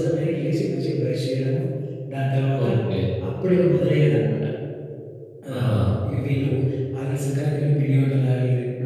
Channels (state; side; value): identical; both; correlation 1.00